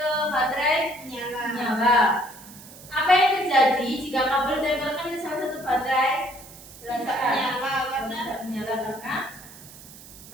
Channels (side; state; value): right; noise; hiss, 18 dB below the sound